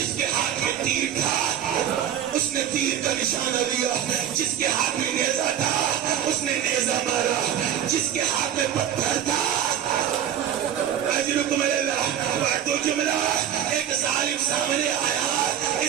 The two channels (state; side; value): quieter; left; 10.0 dB